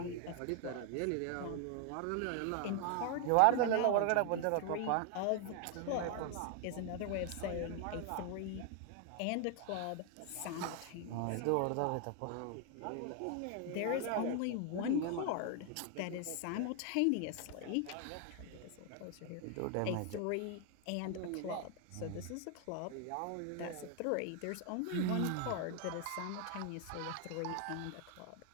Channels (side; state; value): both; different; correlation 0.00